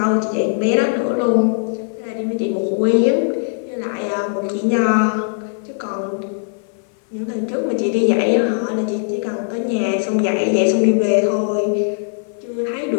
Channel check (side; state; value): right; silent; 56 dB below the other